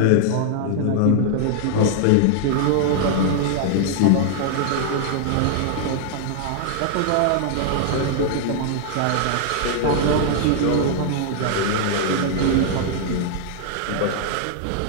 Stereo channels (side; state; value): both; different; correlation -0.01